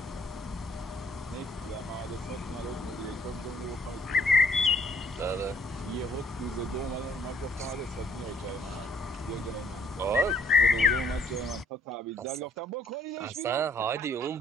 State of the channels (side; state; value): both; normal; correlation 0.65